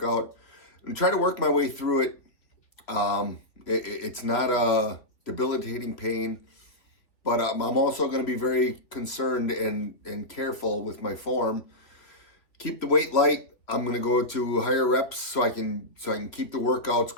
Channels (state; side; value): late; right; 2.8 ms